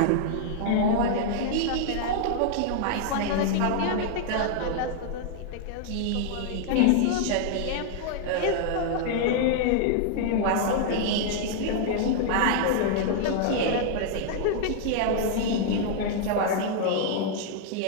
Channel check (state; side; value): different; both; correlation -0.01